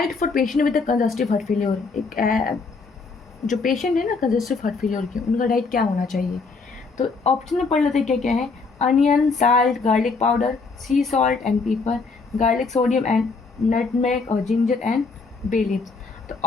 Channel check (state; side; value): quieter; right; 4.3 dB